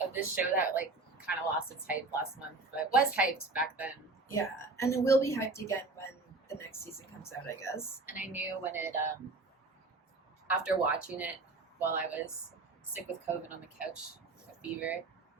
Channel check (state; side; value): quieter; left; 3.5 dB